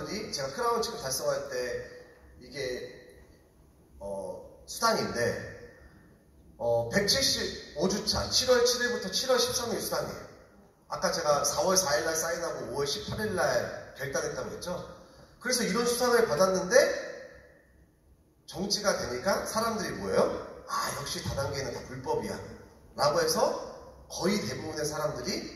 제가 크라운 직급 달성할 때 이게 수당인데 175주차 7월 7일부터 7월 13일 수당이에요. 아까 제가 4월 4일날 사인하고 5월 18일날 결단했다고 했죠. 그래서 이런 수당을 받았는데 정지가 되니까 사람들이 뭐예요? 역시 다단계는 다 불법이야 라고 해서 거의 대부분의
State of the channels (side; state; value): both; identical; correlation 1.00